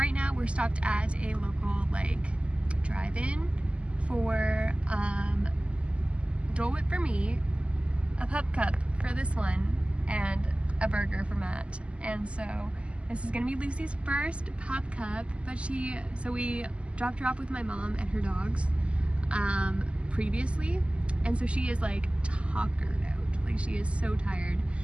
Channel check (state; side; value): late; left; 0.055 ms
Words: now we're stopped at a local drive-in for Dole Whip for me, a Pup Cup for this one, and a burger for Matt. And so this is gonna be Lucy's first Pup Cup, but so we dropped her off with my mom and her dogs previously, and so she is tuckered out. She is so tired.